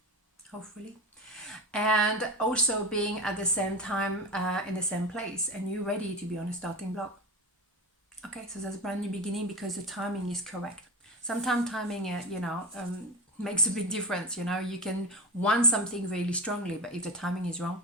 hopefully. And also being at the same time in the same place, and you're ready to be on a starting block. Okay, so that's a brand new beginning because the timing is correct. Sometimes timing, makes a big difference. You know, you can want something really strongly, but if the timing is wrong,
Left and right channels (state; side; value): normal; both; correlation 0.22